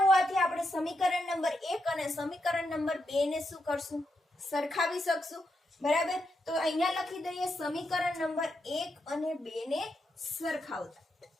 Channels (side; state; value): both; normal; correlation 0.83